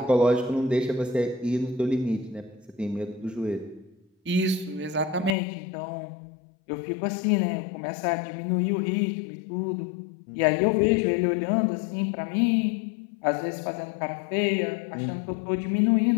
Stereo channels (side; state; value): right; drops out; at 5.4 s